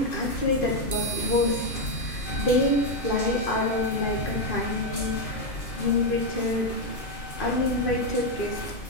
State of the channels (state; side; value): late; right; 2.5 ms